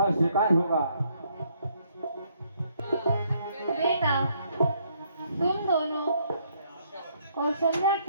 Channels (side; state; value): both; inverted; correlation -0.70